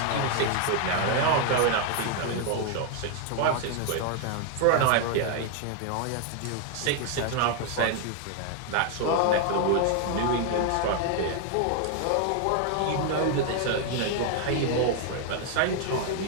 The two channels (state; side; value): different; both; correlation 0.00